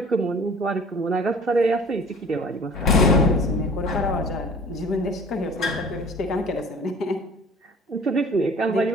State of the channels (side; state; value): both; normal; correlation 0.47